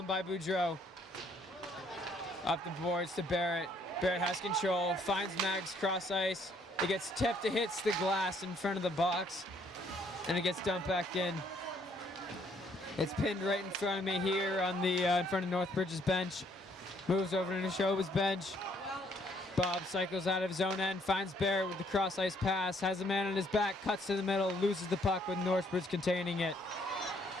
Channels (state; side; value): normal; both; correlation 0.66